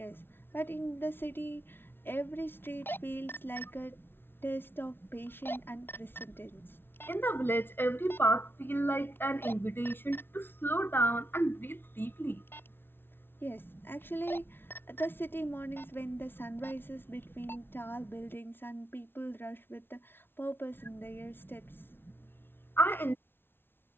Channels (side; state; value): right; late; 0.11 ms